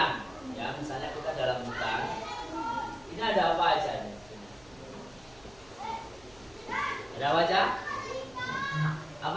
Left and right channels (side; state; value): right; noise; hum, 25 dB below the sound